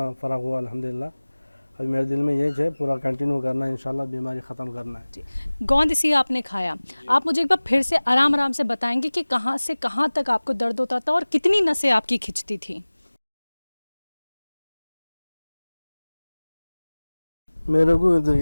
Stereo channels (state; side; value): inverted; both; correlation -1.00